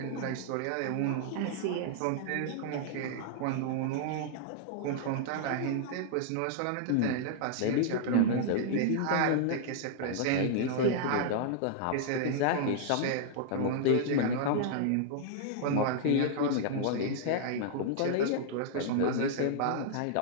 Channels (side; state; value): both; different; correlation -0.01